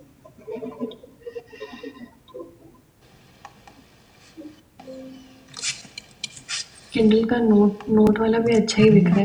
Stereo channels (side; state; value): both; identical; correlation 1.00